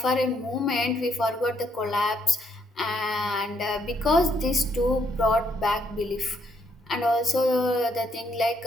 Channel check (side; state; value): both; normal; correlation 0.72